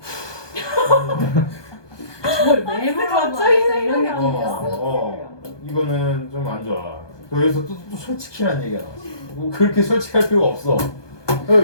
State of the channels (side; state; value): right; late; 1.2 ms